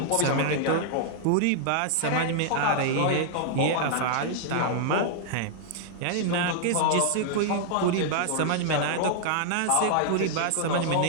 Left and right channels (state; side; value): different; both; correlation -0.01